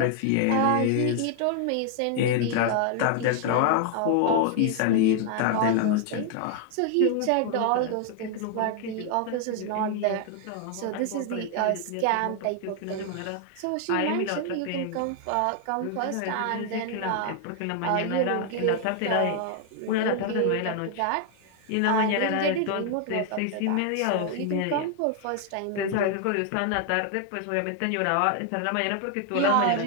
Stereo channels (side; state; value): both; different; correlation 0.00